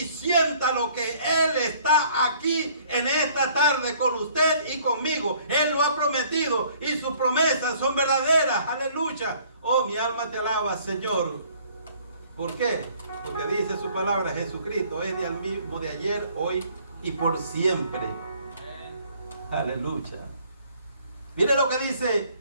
siéntalo que Él está aquí en esta tarde con usted y conmigo. Él lo ha prometido y sus promesas son verdaderas. Aleluya. Oh, mi alma te alaba, Señor. ¿Por qué? Porque dice su palabra, Jesucristo es el mismo de ayer, hoy y por siempre. Aleluya. Mire lo que dice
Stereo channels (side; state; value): both; inverted; correlation -0.59